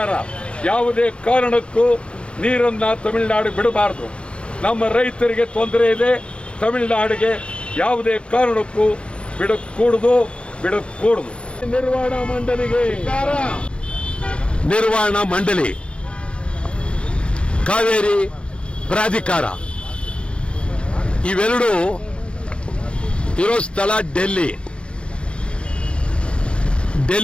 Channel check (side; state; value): right; late; 0.058 ms